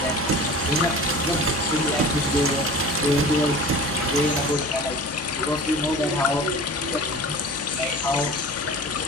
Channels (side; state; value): both; normal; correlation 0.38